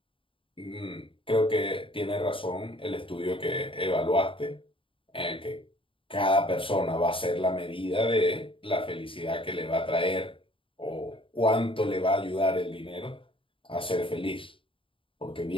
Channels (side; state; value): right; late; 0.25 ms